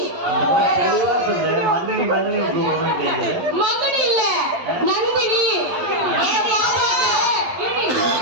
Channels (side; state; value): left; late; 11 ms